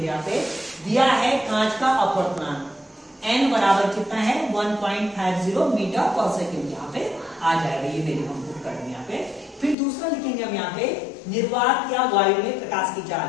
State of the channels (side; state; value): right; drops out; at 9.8 s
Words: यहाँ पे दिया है कांच का अपवर्तनांक n बराबर कितना है? 1.50 मीटर पर सेकेंड। यहाँ पे आ जाएगा, ये वैल्यू हम पुट करेंगे यहाँ पे। फिर दूसरा लिखेंगे हम यहाँ पे निर्वात या वायु में प्रकाश की चाल।